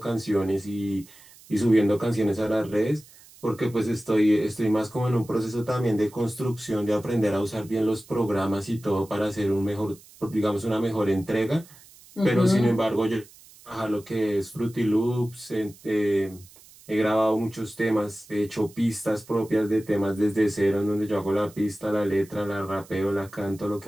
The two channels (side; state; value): right; noise; hiss, 24 dB below the sound